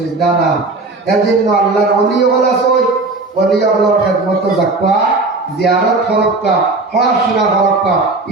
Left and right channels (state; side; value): quieter; left; 3.4 dB